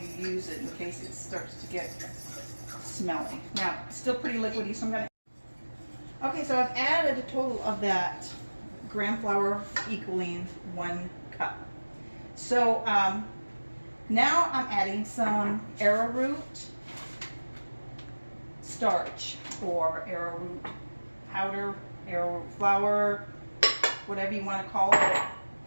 use it in case it starts to get smelly. Now, it's still pretty liquidy, so I'm going to... Okay, so I've added a total of that gram flour equaling 1 cup. So now I'm adding some arrowroot starch or arrowroot powder, arrowroot flour, whatever you want to call it.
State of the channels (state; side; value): inverted; both; correlation -1.00